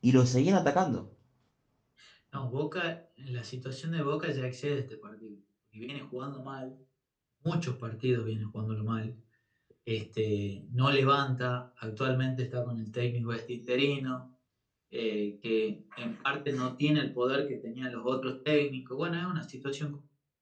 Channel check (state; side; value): identical; both; correlation 1.00